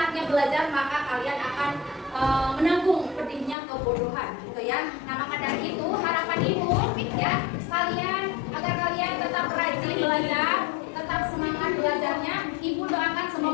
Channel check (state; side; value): drops out; right; at 3.6 s